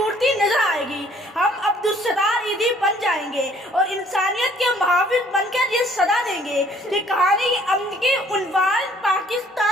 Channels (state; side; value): normal; both; correlation 0.59